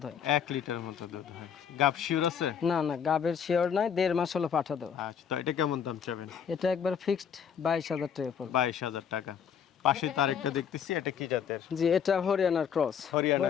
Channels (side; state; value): right; quieter; 7.7 dB